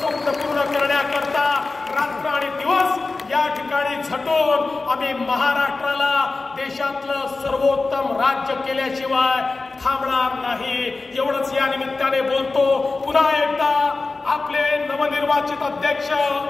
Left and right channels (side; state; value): right; quieter; 3.7 dB